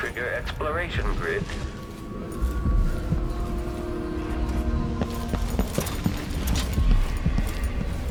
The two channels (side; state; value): both; identical; correlation 1.00